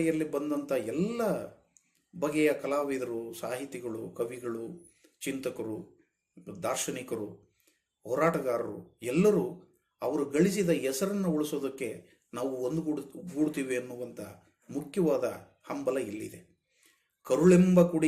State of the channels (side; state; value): both; identical; correlation 1.00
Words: ಬಂದಂಥ ಎಲ್ಲ ಬಗೆಯ ಕಲಾವಿದರು, ಸಾಹಿತಿಗಳು, ಕವಿಗಳು, ಚಿಂತಕರು, ದಾರ್ಶನಿಕರು, ಹೋರಾಟಗಾರರು ಎಲ್ಲರೂ ಅವರು ಗಳಿಸಿದ ಹೆಸರನ್ನು ಉಳಿಸೋದಕ್ಕೆ ನಾವು ಒಂದುಗೂಡ್ತೀವಿ ಅನ್ನುವಂಥ ಮುಖ್ಯವಾದ ಹಂಬಲ ಇಲ್ಲಿದೆ. ಕರುಳೆಂಬ